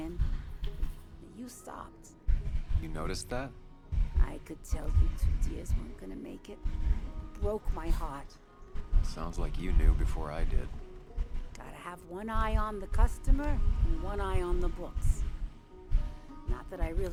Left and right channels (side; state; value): both; identical; correlation 1.00